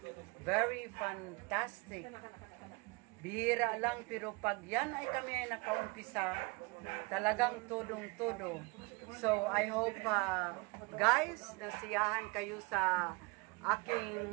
very fantastic. Bihira lang, pero pag yan ay kami ay nakaumpisa, talagang tudong-tudo. So, I hope, guys, nasiyahan kayo sa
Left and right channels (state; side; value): quieter; left; 27.7 dB